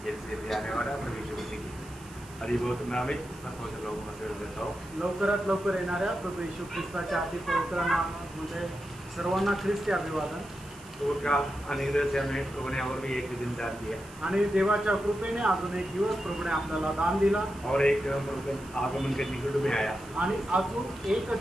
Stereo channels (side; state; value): right; noise; hiss, 21 dB below the sound